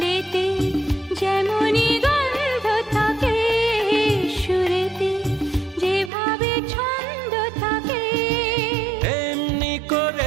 যেমনি গন্ধ থাকে, সুরেতে যেভাবে ছন্দ থাকে, এমনি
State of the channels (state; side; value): drops out; left; at 6.1 s